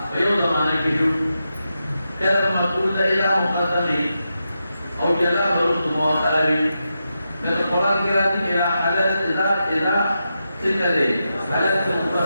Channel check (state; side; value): inverted; both; correlation -0.87